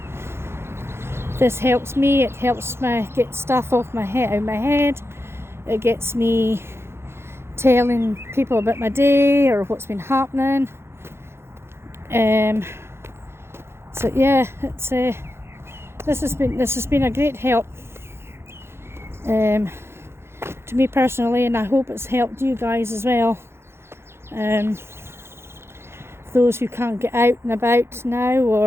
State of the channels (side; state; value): left; late; 0.12 ms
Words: This helps me. It helps me get stuff out of my head. It gets me telling people about my day or what's been happening. So yeah, it's this has been a great help to me personally, and I hope it's helped you guys as well. Those who can't get out and about now,